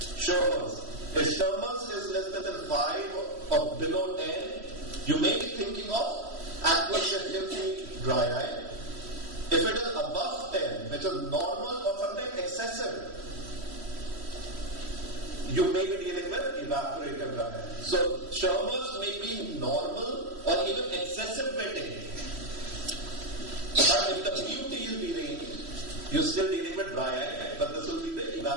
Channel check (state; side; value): late; left; 3.1 ms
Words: Sherman's. If Sherman's is less than 5 or below 10, you may be thinking of aqueous deficiency dry eye. If it is above which is normal or sometimes excessive, you may be dealing with evaporative dry eye. So Schirmer's may be normal or even excessive wetting. But if the PUT is deranged, you're still dealing with dry eye, but this will be the